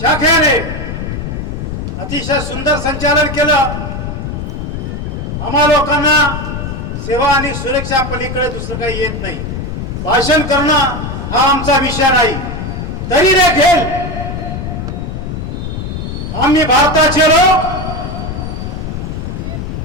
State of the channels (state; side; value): noise; left; rumble, 5 dB below the sound